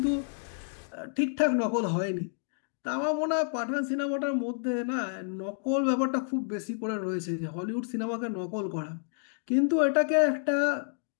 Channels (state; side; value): silent; right; digital silence